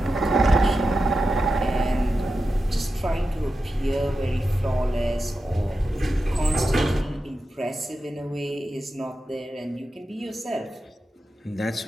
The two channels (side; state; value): both; normal; correlation 0.90